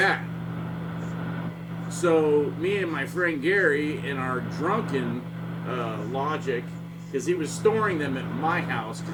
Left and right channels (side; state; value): both; identical; correlation 1.00